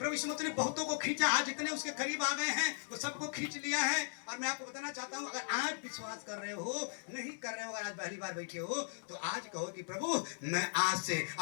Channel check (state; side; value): silent; right; 53 dB below the other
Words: यीशु मसीह ने बहुतों को खींचा, आज जितने उसके करीब आ गए हैं वो सबको खींच लिया है। और मैं आपको बताना चाहता हूं, अगर आज विश्वास कर रहे हो, नहीं कर रहे हो, अगर आज पहली बार बैठे हो तो आज कहो कि प्रभु मैं आज से